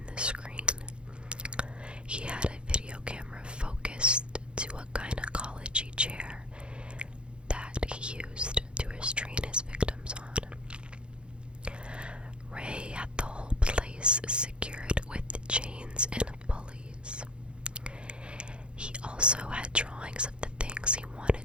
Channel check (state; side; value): late; left; 0.055 ms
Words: the screen. He had a video camera focused to a gynecology chair that he used to restrain his victims on. Ray had the whole place secured with chains and pulleys. He also had drawings of the things he